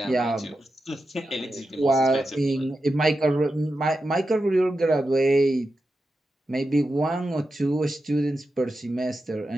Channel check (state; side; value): normal; both; correlation 0.90